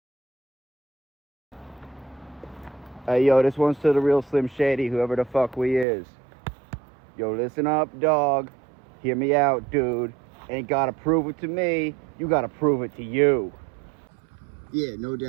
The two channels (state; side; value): drops out; left; at 5.9 s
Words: Hey, yo, this one's to the real Slim Shady, whoever the fuck we is. Yo, listen up, dog. Hear me out, dude. Ain't gotta prove it to me. You gotta prove it to you. Yeah, no